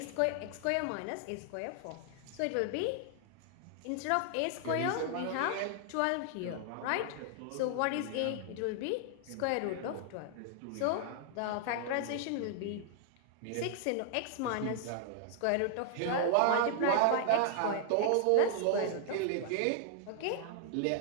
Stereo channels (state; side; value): different; both; correlation 0.00